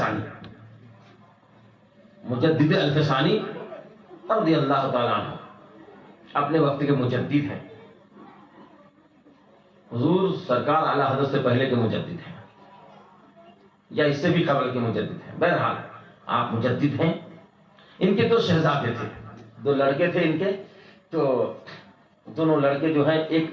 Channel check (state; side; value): identical; both; correlation 1.00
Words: مجدد الفسانی رضی اللہ تعالیٰ عنہ اپنے وقت کے مجدد ہیں، حضور سرکار اعلیٰ حضرت سے پہلے کے مجدد ہیں یا اس سے بھی قبل کے مجدد ہیں. بہرحال آپ مجدد ہیں. ان کے 2 شہزادے تھے، 2 لڑکے تھے ان کے. تو دونوں لڑکے جو ہیں ایک